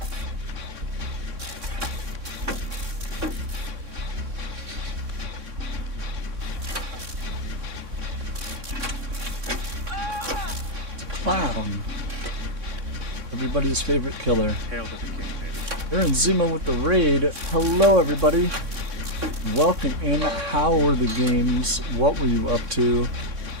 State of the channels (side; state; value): left; late; 3.6 ms